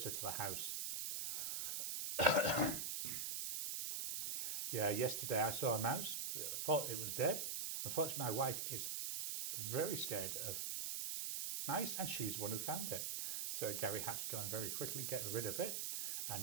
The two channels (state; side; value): noise; right; hiss, 1 dB below the sound